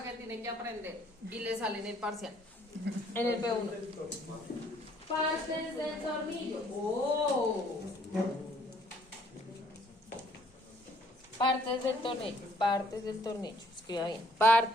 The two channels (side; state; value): both; normal; correlation 0.64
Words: que tienen que aprender y le sale en el parcial, en el P1. Partes del tornillo. ¡Oh! Partes del tornillo, escriba bien,